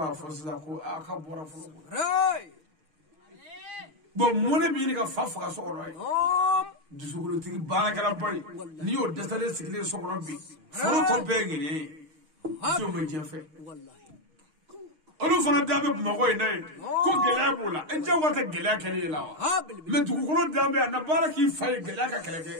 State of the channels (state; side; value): late; left; 6.4 ms